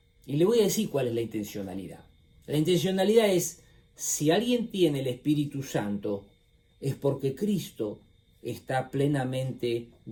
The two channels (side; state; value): both; identical; correlation 1.00